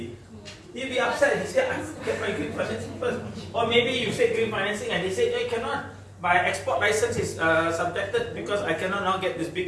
He'll be upset. He said, I get my green financing first. Or maybe you say green financing and they say, no, you cannot. My export license is subjected because I cannot now get this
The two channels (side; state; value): both; identical; correlation 1.00